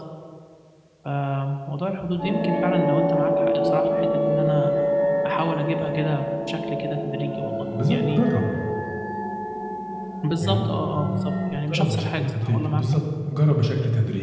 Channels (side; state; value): both; identical; correlation 1.00